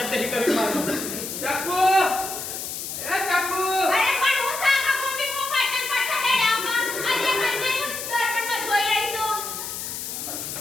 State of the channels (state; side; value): noise; left; hiss, 6 dB below the sound